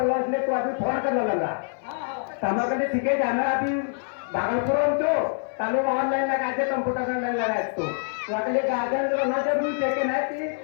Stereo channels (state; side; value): silent; right; 58 dB below the other